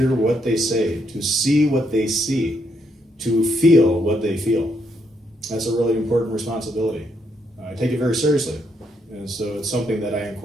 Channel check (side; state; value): both; normal; correlation 0.76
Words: what they say, to see what they see, to feel what they feel. That's a really important responsibility. I take it very seriously. And so it's something that I